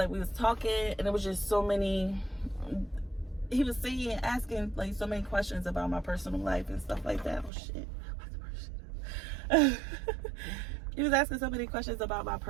we was talking, and it was just so many, he was saying, asking, like, so many questions about my personal life and stuff like that. Oh shit. He was asking so many questions about my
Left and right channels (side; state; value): left; drops out; at 7.5 s